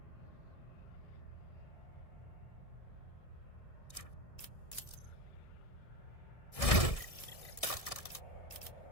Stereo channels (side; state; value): right; late; 1.6 ms